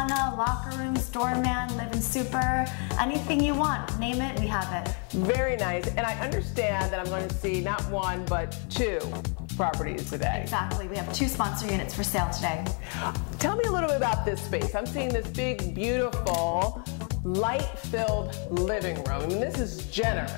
locker rooms, doorman, live-in super, anything you want, name it, we have it. Very nice, and I understand that I'm going to see not one, but two properties today. Exactly, we have 2 sponsor units for sale today. Tell me a little bit about this space. I'm seeing this big, beautiful, light-filled living room. I mean, this is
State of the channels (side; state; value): right; quieter; 39.8 dB